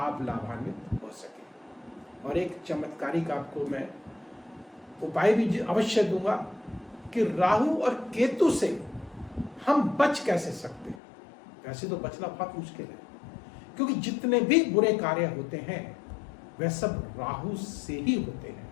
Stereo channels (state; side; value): drops out; right; at 11.0 s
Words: लाभान्वित हो सके। और एक चमत्कारिक आपको मैं उपाय भी अवश्य दूंगा कि राहु और केतु से हम बच कैसे सकते हैं। वैसे तो बचना बहुत मुश्किल है, क्योंकि जितने भी बुरे कार्य होते हैं वह सब राहु से ही होते